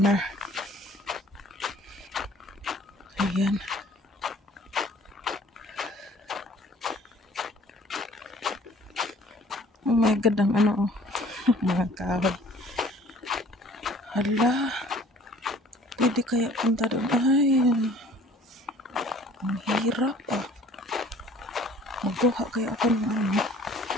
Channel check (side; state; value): both; normal; correlation 0.52